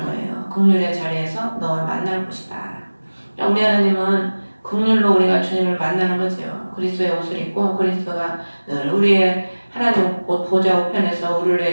거예요. 긍휼의 자리에서 너와 만날 곳이다. 우리 하나님은 긍휼로 우리가 주님을 만나는 거죠. 그리스도의 옷을 입고 그리스도가 늘 우리의 하나님 보좌 우편에서 우리를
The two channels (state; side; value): inverted; both; correlation -1.00